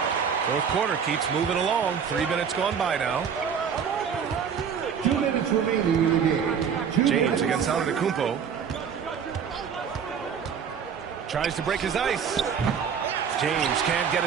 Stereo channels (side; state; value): left; quieter; 7.1 dB